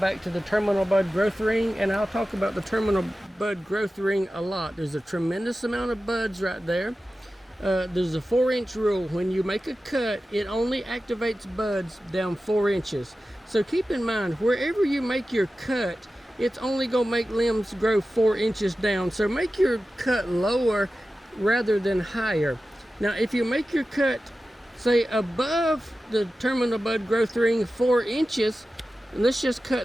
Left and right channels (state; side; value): normal; both; correlation 0.94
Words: to the terminal bud growth ring, and I'll talk about the terminal bud growth ring a lot. There's a tremendous amount of buds right there. There's a 4-inch rule. When you make a cut, it only activates buds down 4 inches. So keep in mind, wherever you make your cut, it's only going to make limbs grow 4 inches down. So make your cut lower rather than higher. Now, if you make your cut, say, above the terminal bud growth ring 4 inches, and let's just